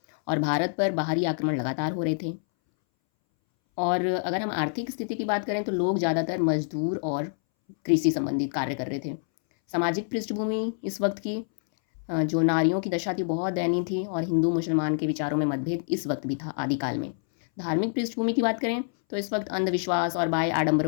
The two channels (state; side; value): silent; right; 60 dB below the other